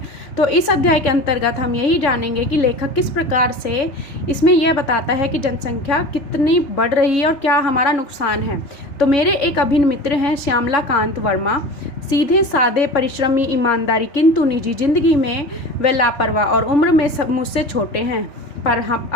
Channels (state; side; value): late; right; 3.6 ms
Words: तो इस अध्याय के अंतर्गत हम यही जानेंगे कि लेखक किस प्रकार से इसमें यह बताता है कि जनसंख्या कितनी बढ़ रही है और क्या हमारा नुकसान है। तो मेरे एक अभिन्न मित्र हैं श्यामलाकांत वर्मा, सीधे साधे, परिश्रमी, ईमानदारी, किंतु निजी जिंदगी में वे लापरवाह और उम्र में मुझसे छोटे हैं, पर हम